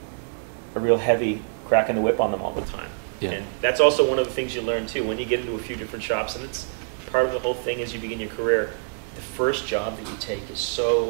heavy crack in the whip on them all the time. Yeah. And that's also one of the things you learn too when you get into a few different shops. And it's part of the whole thing as you begin your career. The first job that you take is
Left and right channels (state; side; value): silent; left; digital silence